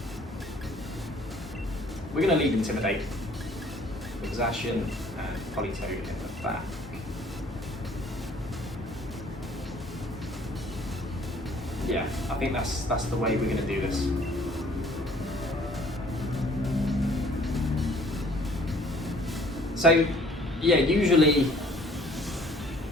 We're going to lead Intimidate with Zacian and Politoed in the back. Yeah, I think that's the way we're going to do this. So, yeah, usually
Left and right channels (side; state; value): both; normal; correlation 0.56